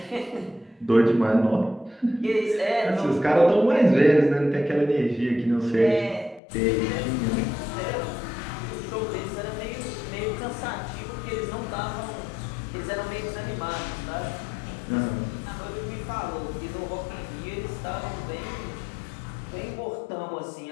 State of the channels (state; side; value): drops out; right; at 6.4 s